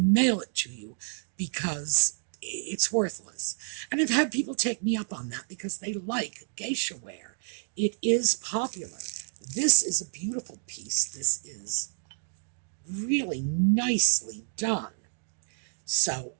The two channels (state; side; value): silent; left; digital silence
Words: it to you because it's worthless. And I've had people take me up on that because they like Geisha Ware. It is popular. This is a beautiful piece. This is really nicely done. So